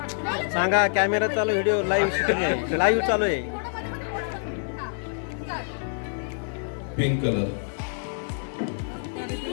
सांगा. कॅमेरा चालू, व्हिडिओ लाईव्ह शूटिंग आहे, लाईव्ह चालू आहे. Pink colour.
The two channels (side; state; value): right; silent; 61 dB below the other